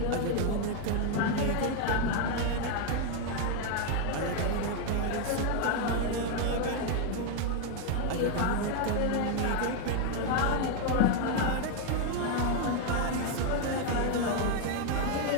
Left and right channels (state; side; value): different; both; correlation 0.01